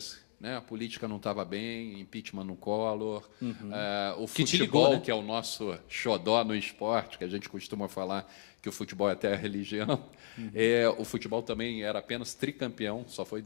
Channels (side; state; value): right; silent; digital silence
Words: Né? A política não estava bem, impeachment no Collor, o futebol, que é o nosso xodó no esporte, que a gente costuma falar que o futebol é até a religião. O futebol também era apenas tricampeão, só foi